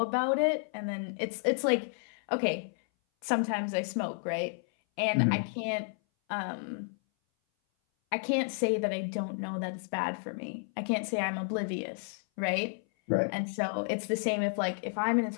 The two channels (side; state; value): right; silent; 57 dB below the other